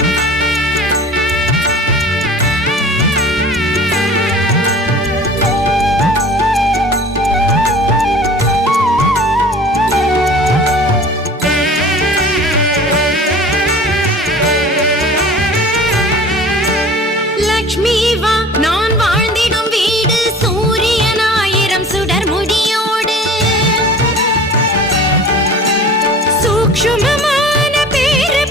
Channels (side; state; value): both; normal; correlation 0.42